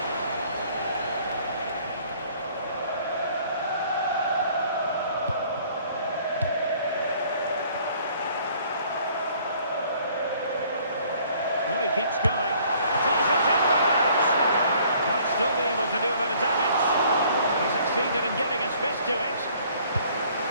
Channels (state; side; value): inverted; both; correlation -0.58